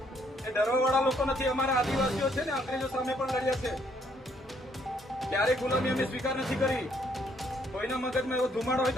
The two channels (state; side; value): normal; both; correlation 0.69